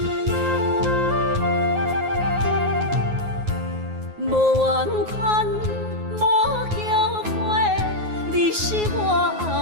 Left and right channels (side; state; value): left; late; 9.5 ms